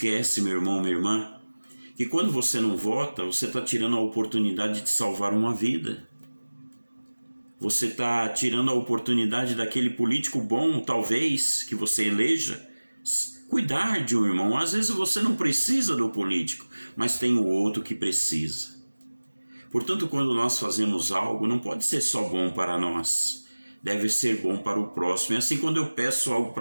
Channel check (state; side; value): inverted; both; correlation -1.00